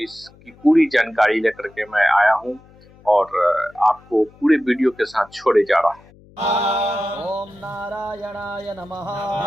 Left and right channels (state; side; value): noise; left; hum, 26 dB below the sound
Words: इसकी पूरी जानकारी लेकर के मैं आया हूं और आपको पूरे वीडियो के साथ छोड़े जा रहा हूं। ओम नारायणाय नमः,